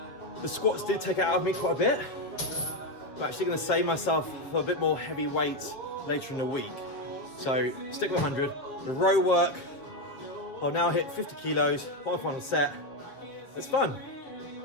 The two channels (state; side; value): late; right; 7.2 ms